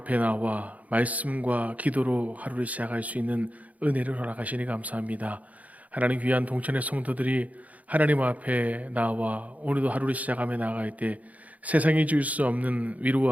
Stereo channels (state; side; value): late; left; 0.072 ms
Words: 나와 말씀과 기도로 하루를 시작할 수 있는 은혜를 허락하시니 감사합니다. 하나님, 귀한 동천의 성도들이 하나님 앞에 나와 오늘도 하루를 시작하며 나아갈 때 세상이 줄 수 없는